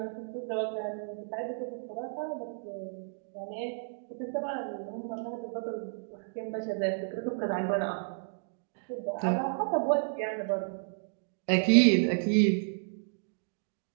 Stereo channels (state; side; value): silent; left; digital silence